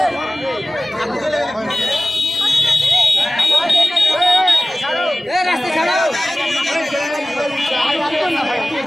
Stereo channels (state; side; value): normal; both; correlation 0.97